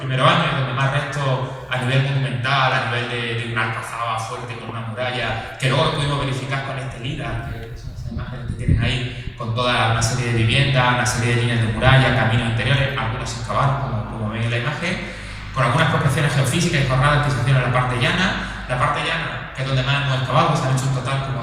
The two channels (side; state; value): both; identical; correlation 1.00